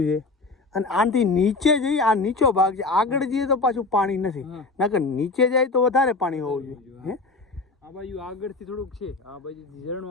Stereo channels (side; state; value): right; quieter; 3.6 dB